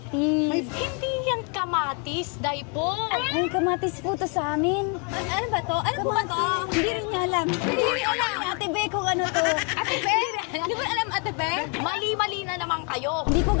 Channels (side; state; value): right; quieter; 36.6 dB